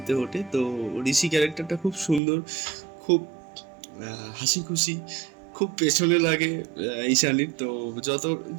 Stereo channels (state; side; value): drops out; left; at 2.2 s